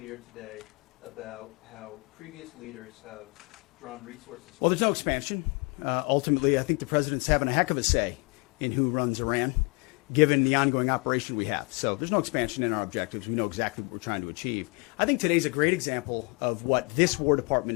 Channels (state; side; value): quieter; right; 31.4 dB